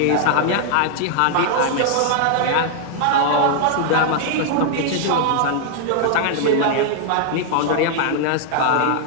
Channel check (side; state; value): both; different; correlation 0.00